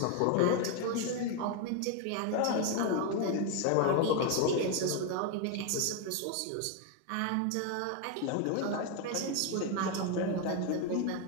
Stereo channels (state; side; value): different; both; correlation 0.01